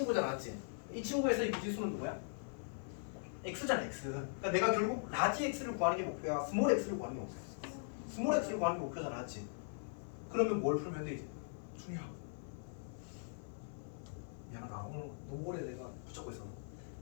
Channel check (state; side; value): silent; right; 51 dB below the other